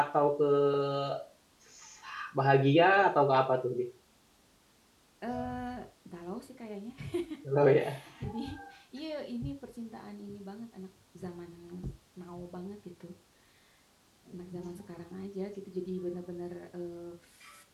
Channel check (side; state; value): both; identical; correlation 1.00